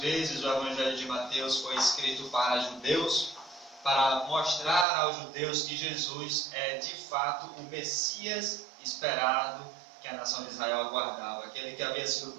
o Evangelho de Mateus foi escrito para judeus, para mostrar aos judeus que Jesus é de fato o Messias esperado que a nação de Israel aguardava, aquele que havia sido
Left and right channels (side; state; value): left; drops out; at 4.9 s